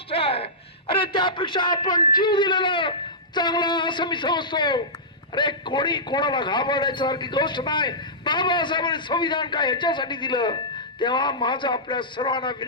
आहे. अरे त्यापेक्षा आपण जीव दिलेला चांगला असं मी समजतो. अरे कोणी कोणाला घाबरण्यासारखी गोष्ट नाही. बाबासाहेबांनी संविधान काय ह्याच्यासाठी दिलं. तेव्हा माझं आपल्या सर्वांना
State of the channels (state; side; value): normal; both; correlation -0.15